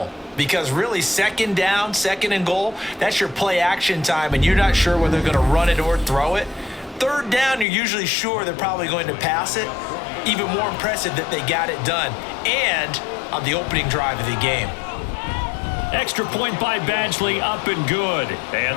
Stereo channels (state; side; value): drops out; right; at 7.7 s